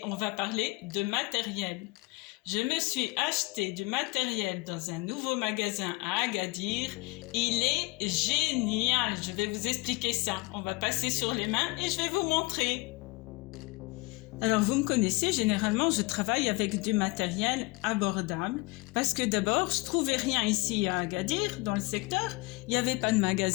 on va parler de matériel. Je me suis acheté du matériel dans un nouveau magasin à Agadir. Il est génial, je vais vous expliquer ça. On va passer sur les mains et je vais vous montrer. Alors vous me connaissez, généralement je travaille avec du matériel abordable parce que d'abord je trouvais rien ici à Agadir dans le secteur, il n'y avait pas de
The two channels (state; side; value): quieter; right; 24.9 dB